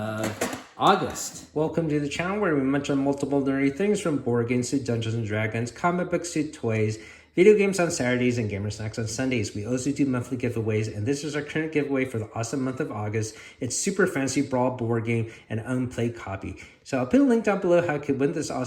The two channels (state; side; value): identical; both; correlation 1.00